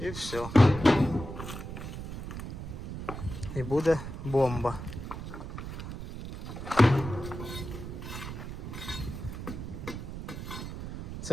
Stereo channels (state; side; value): noise; right; rumble, 8 dB below the sound